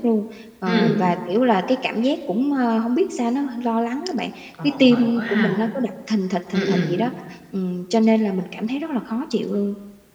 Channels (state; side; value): identical; both; correlation 1.00